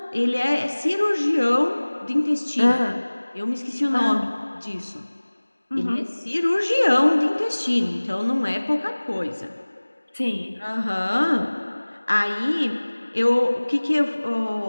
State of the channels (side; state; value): both; inverted; correlation -1.00